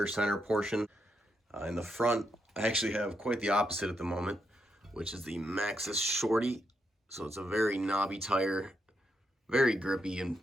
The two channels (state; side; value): normal; both; correlation 0.81